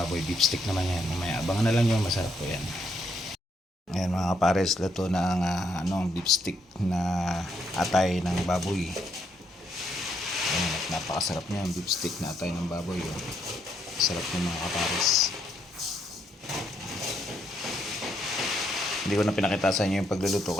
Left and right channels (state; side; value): normal; both; correlation 0.74